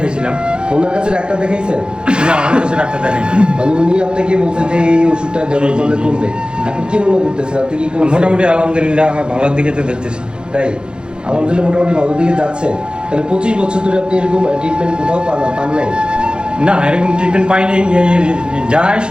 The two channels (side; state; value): left; late; 0.050 ms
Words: ওনার কাছে ডাক্তার দেখাইছেন? না, আমার কাছে ডাক্তার দেখাইনি। মানে উনি আপনাকে বলছেন যে এই ওষুধটা ব্যবহার করলে কমবে, আপনি কি মনে করতেছেন? আপনি কি মোটামুটি আলহামদুলিল্লাহ আমার ভালোর দিকে তো দেখতেছি। তাই আলহামদুলিল্লাহ মোটামুটি ভালোর দিকে যাচ্ছেন। তাহলে 25 বছর ধরে আপনি এরকম ট্রিটমেন্ট কোথাও পান নাই? না, এরকম ট্রিটমেন্ট পাইনি। যায়